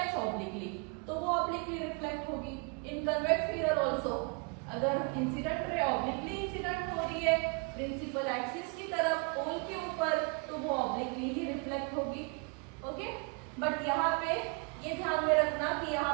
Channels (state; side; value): quieter; left; 33.2 dB